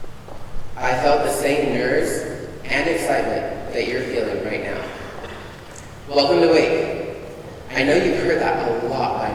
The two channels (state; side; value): identical; both; correlation 1.00